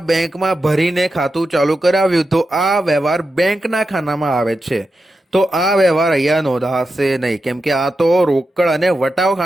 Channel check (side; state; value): both; normal; correlation 0.89